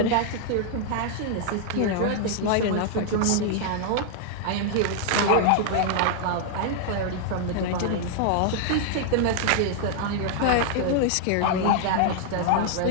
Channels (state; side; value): different; both; correlation 0.00